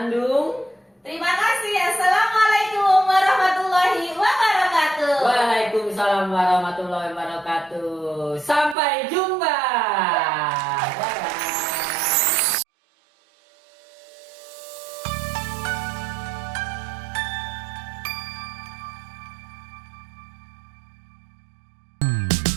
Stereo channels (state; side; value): drops out; left; at 8.8 s